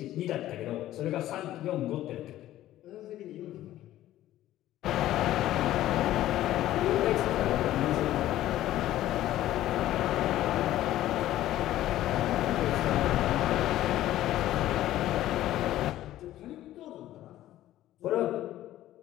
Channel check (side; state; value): right; quieter; 14.0 dB